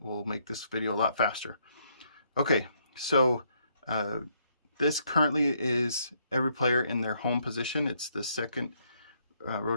make this video a lot faster. Okay, so this currently is every player in their home position. It's the second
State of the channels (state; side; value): inverted; both; correlation -0.71